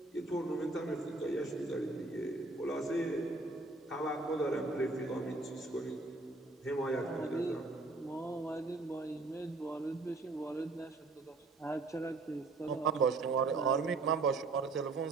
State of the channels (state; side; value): quieter; left; 3.4 dB